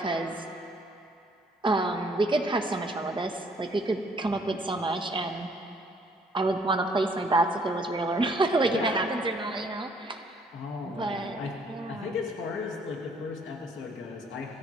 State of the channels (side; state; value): both; normal; correlation 0.63